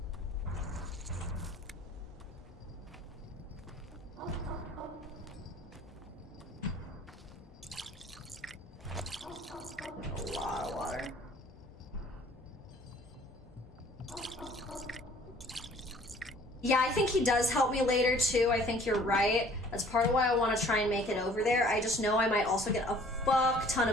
A lot of water. Yeah, I think he does help me later too. I think you're right. That's part of why I want to try and make it over there. I just know I might also get a fuck ton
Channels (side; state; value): both; normal; correlation 0.54